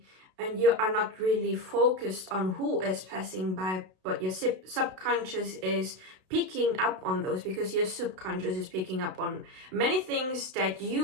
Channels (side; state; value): left; late; 32 ms